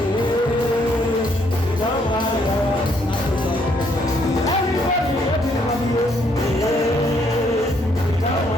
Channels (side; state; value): both; normal; correlation 0.70